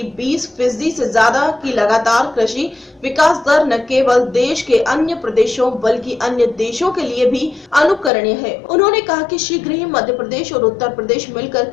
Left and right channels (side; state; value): right; drops out; at 8.1 s